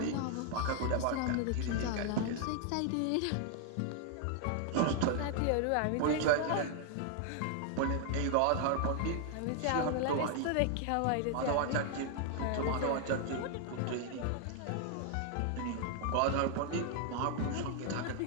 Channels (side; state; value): both; different; correlation 0.00